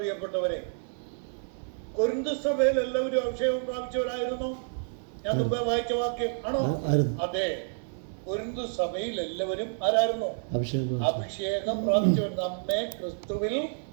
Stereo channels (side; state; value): left; silent; digital silence